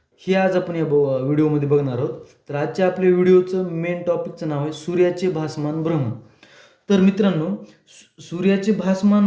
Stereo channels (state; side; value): identical; both; correlation 1.00